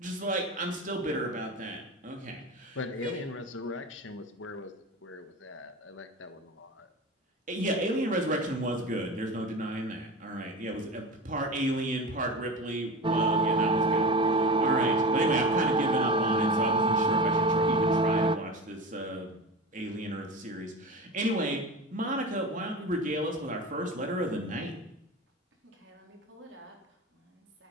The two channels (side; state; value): both; normal; correlation 0.29